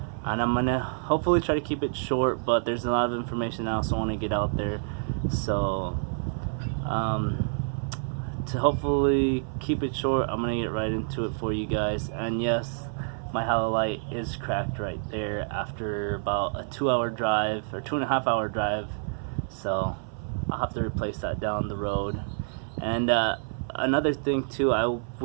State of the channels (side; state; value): left; silent; 57 dB below the other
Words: and I'm gonna hopefully try to keep it short, but there's a lot of information I also want to get out there, so to hopefully keep it short, I'm gonna get right into it for you guys. And yes, my halo light is cracked right there after about a 2-hour drive or 2.5-hour drive, so I'll have to replace that down the road. And another thing too, I